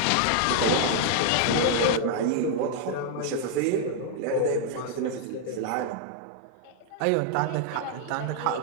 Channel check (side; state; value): both; different; correlation 0.00